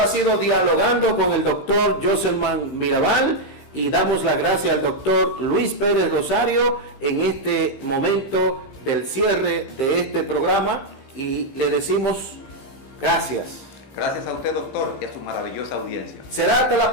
ha sido Dialogando con el doctor Joselman Mirabal, y damos las gracias al doctor Luis Pérez Rosario en este momento del cierre de este programa, y le decimos gracias. Gracias a usted, doctor, y a su maravillosa audiencia. Será hasta la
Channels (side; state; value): right; late; 15 ms